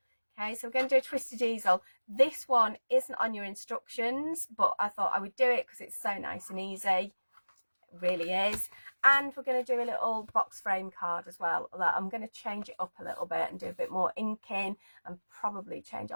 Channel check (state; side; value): inverted; both; correlation -1.00